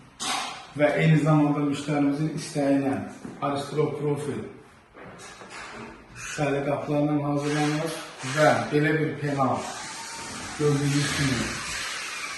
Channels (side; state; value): both; identical; correlation 1.00